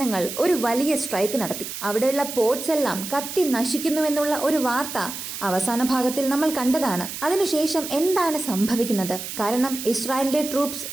ഒരു വലിയ സ്ട്രൈക്ക് നടത്തി. അവിടെയുള്ള പോർട്സ് എല്ലാം കത്തി നശിക്കുന്നുവെന്നുള്ള ഒരു വാർത്ത അവസാന ഭാഗത്തിൽ നമ്മൾ കണ്ടതാണ്. അതിനുശേഷം എന്താണ് സംഭവിക്കുന്നത്? കാരണം ഇസ്രായേലിന്റെ ട്രൂപ്സ്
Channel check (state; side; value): noise; right; hiss, 8 dB below the sound